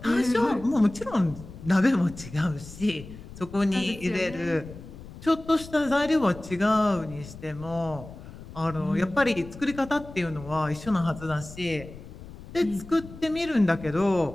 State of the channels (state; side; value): noise; left; rumble, 15 dB below the sound